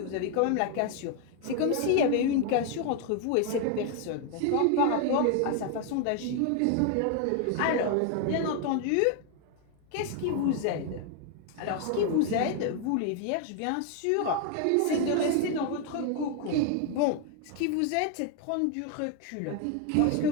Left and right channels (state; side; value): different; both; correlation 0.01